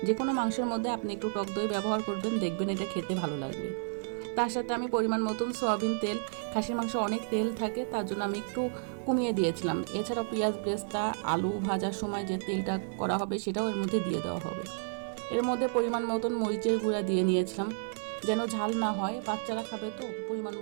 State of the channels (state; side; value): silent; left; 57 dB below the other